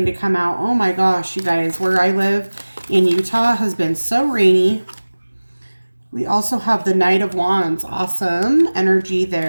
to come out. Oh my gosh, you guys, where I live in Utah has been so rainy. We also have the Knight of Wands. Awesome energy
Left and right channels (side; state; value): both; inverted; correlation -1.00